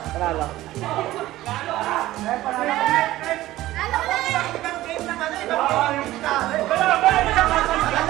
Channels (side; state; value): left; quieter; 15.9 dB